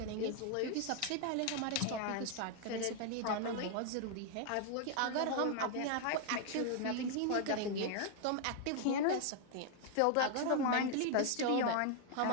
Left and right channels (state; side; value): different; both; correlation 0.00